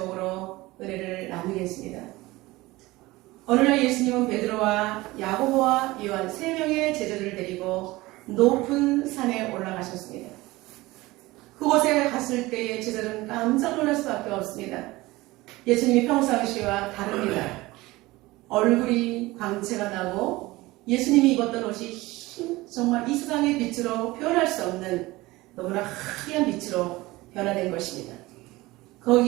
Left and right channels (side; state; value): left; quieter; 20.0 dB